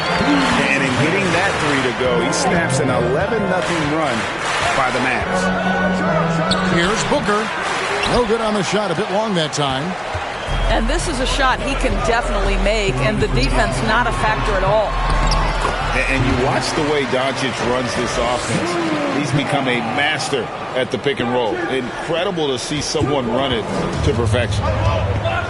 in getting that three to go, he snaps an 11-0 run by the Mavs. Here's Booker. No good on the shot, a bit long that time. And this is a shot he can definitely make, and the defense not a factor at all. And you watch the way Doncic runs this offense. He's become a master at the pick and roll. Incredible to see someone run it to perfection.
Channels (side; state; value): both; identical; correlation 1.00